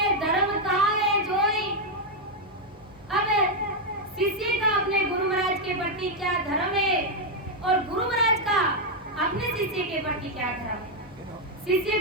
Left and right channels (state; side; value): normal; both; correlation 0.01